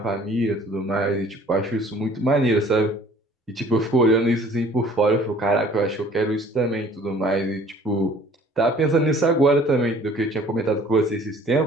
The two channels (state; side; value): normal; both; correlation 0.53